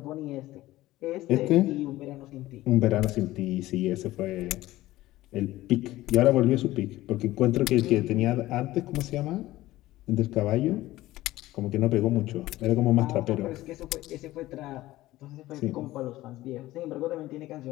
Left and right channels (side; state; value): right; quieter; 16.7 dB